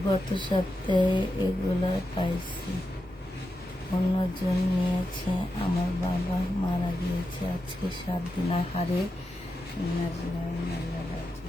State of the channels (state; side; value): normal; both; correlation 0.88